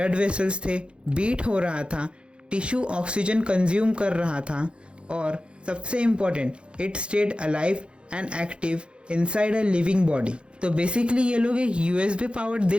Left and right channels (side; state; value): left; late; 0.056 ms